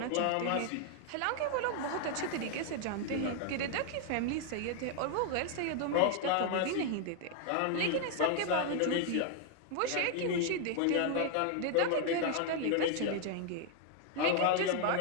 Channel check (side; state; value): both; different; correlation 0.00